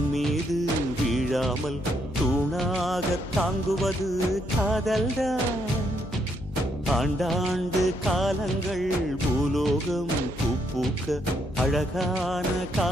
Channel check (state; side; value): noise; left; hum, 15 dB below the sound